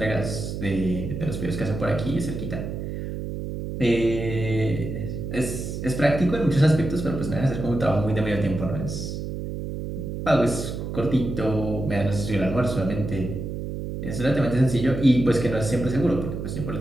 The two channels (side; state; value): right; noise; hum, 5 dB below the sound